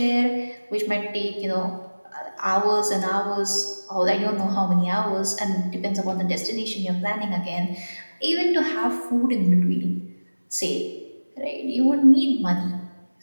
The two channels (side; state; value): both; inverted; correlation -1.00